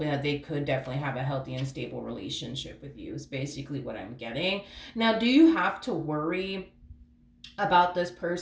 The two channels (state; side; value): identical; both; correlation 1.00